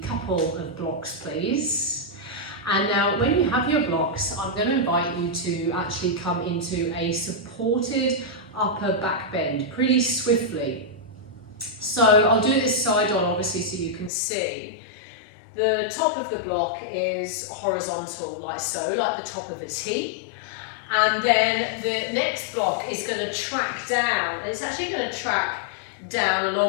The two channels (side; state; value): right; drops out; at 14.1 s